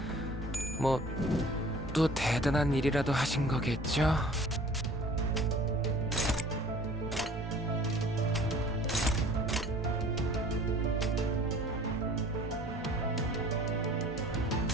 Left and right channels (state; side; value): normal; both; correlation 0.49